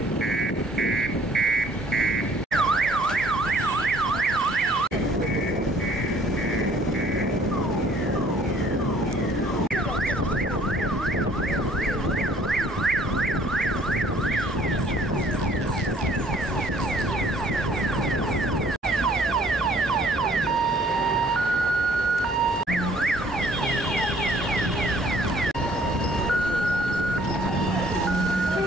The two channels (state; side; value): normal; both; correlation 0.58